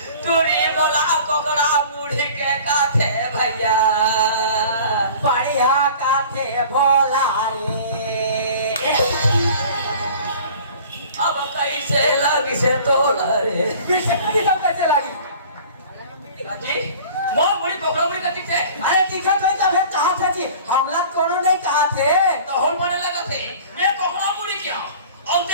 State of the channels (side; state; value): both; inverted; correlation -0.45